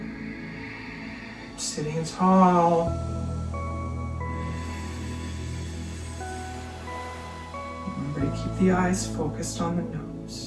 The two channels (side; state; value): both; identical; correlation 1.00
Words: Sitting tall. Remember to keep the eyes focused on the